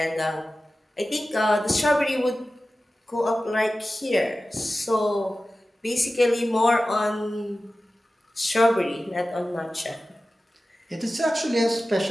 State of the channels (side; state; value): both; normal; correlation 0.95